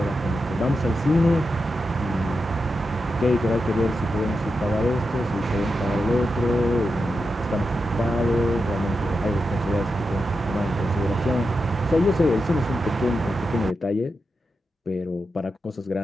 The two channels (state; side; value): normal; both; correlation 0.88